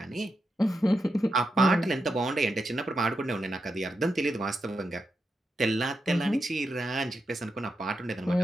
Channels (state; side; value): normal; both; correlation 0.86